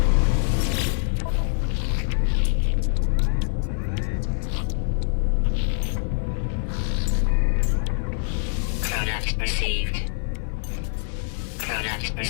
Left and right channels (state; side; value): silent; right; 59 dB below the other